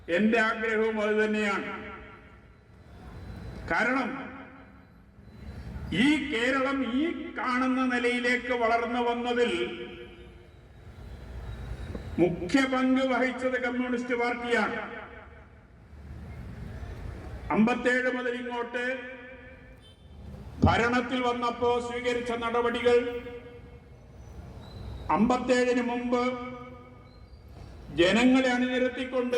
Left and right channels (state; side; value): identical; both; correlation 1.00